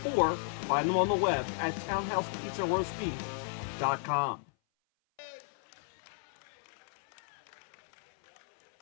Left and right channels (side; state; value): right; silent; 55 dB below the other